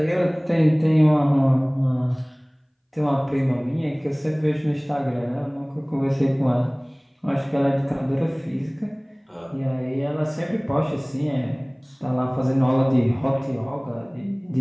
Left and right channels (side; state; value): both; identical; correlation 1.00